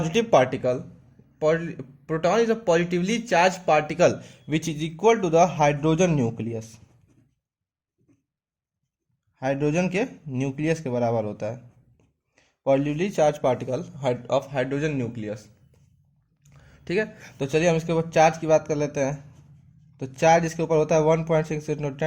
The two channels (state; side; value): identical; both; correlation 1.00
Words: particle. Proton is a positively charged particle which is equal to the hydrogen nucleus। Hydrogen के न्यूक्लियस के बराबर होता है, positively charge particle of hydrogen nucleus. ठीक है, तो चलिए हम इसके ऊपर चार्ज की बात कर लेते हैं। तो चार्ज इसके ऊपर होता है 1.6 into